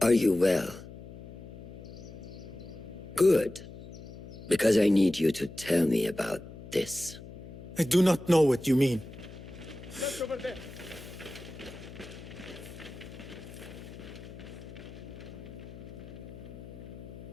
Are you well? Good. Because I need you to tell me about this. I do not know what you mean. Look over there.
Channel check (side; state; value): left; noise; hum, 14 dB below the sound